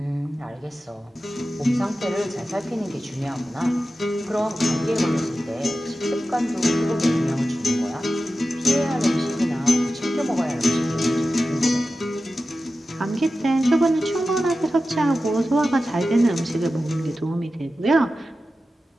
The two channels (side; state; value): both; normal; correlation 0.93